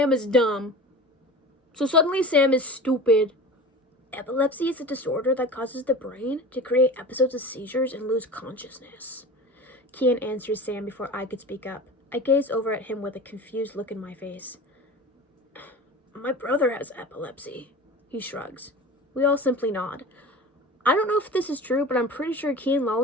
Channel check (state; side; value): normal; both; correlation 0.35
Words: is dumb. So suddenly Sam is stupid. Epilepsy is a disorder that causes the brain to create episodes of seizures and lose consciousness. Kian answers Sam before I could speak up. I gaze over at him with a confused look in my face. My brother has epilepsy. He shrugs. We all simply nod. I don't know if this is true, but I'm pretty sure Kian